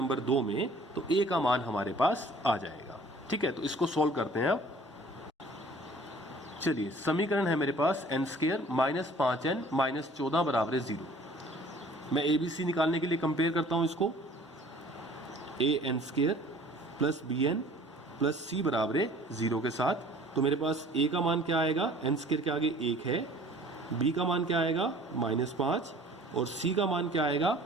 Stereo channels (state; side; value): normal; both; correlation 0.51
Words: 2 में, तो a का मान हमारे पास आ जाएगा, ठीक है। तो इसको सोल्व करते हैं अब। चलिए समीकरण है मेरे पास n square minus 5n minus 14 बराबर है 0। मैं ए बी सी निकालने के लिए कंपेयर करता हूं इसको, A N square plus B N plus C बराबर है 0 के साथ। तो मेरे पास ए का मान क्या आएगा, एन स्क्वायर के आगे 1 है, बी का मान क्या आएगा माइनस 5 और सी का मान क्या आएगा